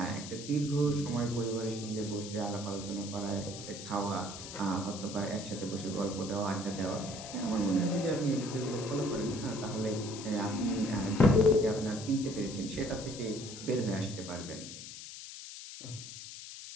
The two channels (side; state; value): left; noise; hiss, 11 dB below the sound